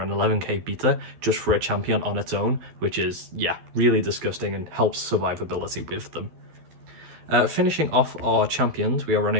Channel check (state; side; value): late; left; 12 ms